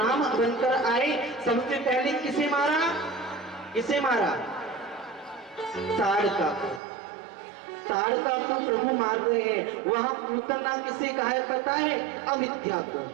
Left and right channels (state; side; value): drops out; left; at 6.8 s